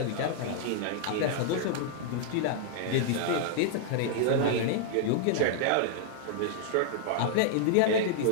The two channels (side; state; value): both; different; correlation -0.01